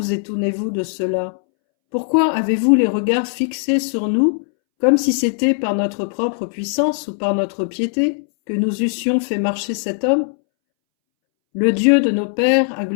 étonnez-vous de cela? Pourquoi avez-vous les regards fixés sur nous, comme si c'était par notre propre puissance ou par notre piété que nous eussions fait marcher cet homme? Le Dieu de nos pères a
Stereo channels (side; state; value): right; silent; 65 dB below the other